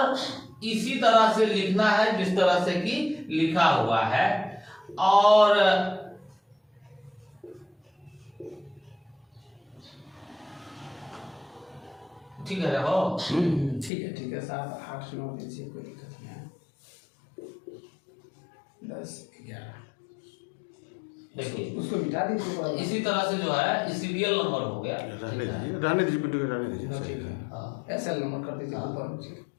इसी तरह से लिखना है जिस तरह से कि लिखा हुआ है। और ठीक है हो, ठीक है साहब, 8 9 दीजिए, कोई दिक्कत नहीं है। 10 11 देखिए उसको मिटा दीजिए। इसी तरह से जो है सीरियल नंबर हो गया, रहने दीजिए पिंटू के, रहने दीजिए। ठीक है, हाँ, एसएल नंबर कर दीजिए ऊपर नीचे,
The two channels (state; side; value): drops out; right; at 13.9 s